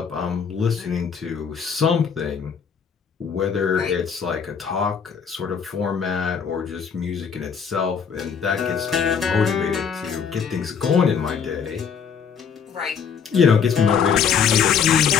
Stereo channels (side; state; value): right; quieter; 6.8 dB